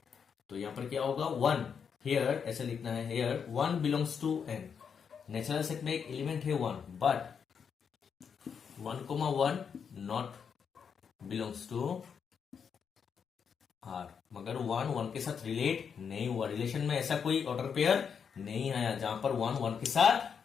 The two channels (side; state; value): right; quieter; 6.8 dB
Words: तो यहां पर क्या होगा, 1 हियर ऐसे लिखना है, here 1 belongs to n। Natural set में एक एलिमेंट है 1, but 1,1 not belongs to r, मगर 1 के साथ रिलेट नहीं हुआ। रिलेशन में ऐसा कोई ऑर्डर पेयर नहीं आया जहां पर 1 के